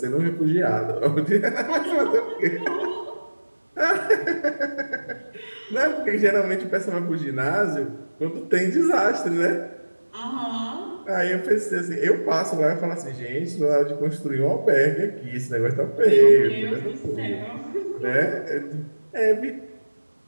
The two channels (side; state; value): both; inverted; correlation -1.00